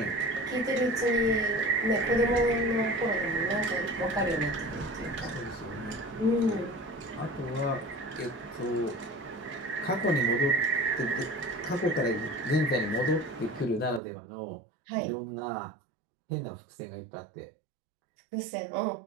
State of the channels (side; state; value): left; drops out; at 14.0 s